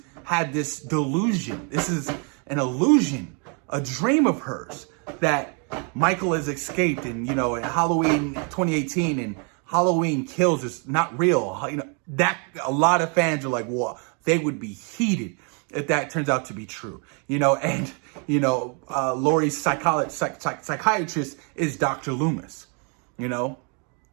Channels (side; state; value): left; quieter; 37.3 dB